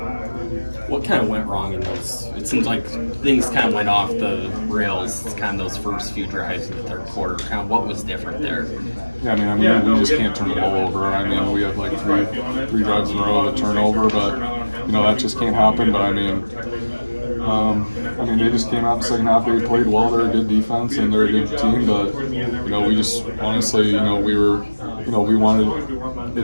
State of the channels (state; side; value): inverted; both; correlation -1.00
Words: What kind of went wrong in those? It seems like things kind of went off the rails, kind of those first few drives in the third quarter. Kind of what was different there? Yeah, I mean, we just can't turn the ball over. I mean, we have like three drives in a row of a turnover, but that just can't happen. But they just came out in the second half. They played well. They're a good defense and they're a good team. But we just honestly, we wanted